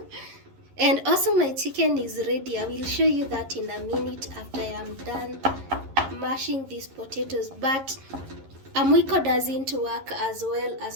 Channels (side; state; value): left; late; 11 ms